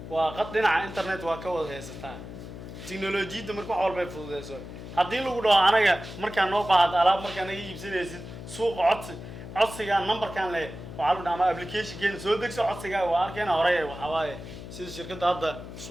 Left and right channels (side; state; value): left; noise; hum, 12 dB below the sound